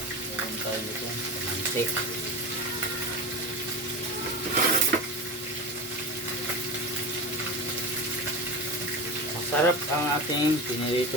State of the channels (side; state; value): both; normal; correlation 0.27